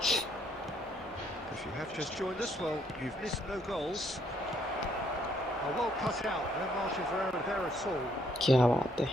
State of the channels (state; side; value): normal; both; correlation 0.69